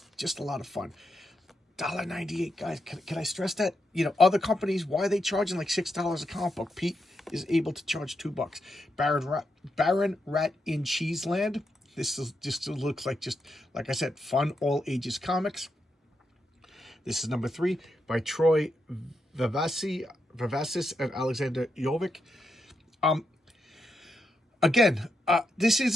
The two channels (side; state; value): both; normal; correlation 0.83